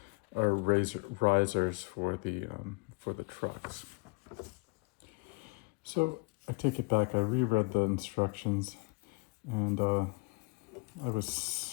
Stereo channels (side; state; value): right; quieter; 29.0 dB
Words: are risers for the trucks. So I take it back. I reread the instructions, and I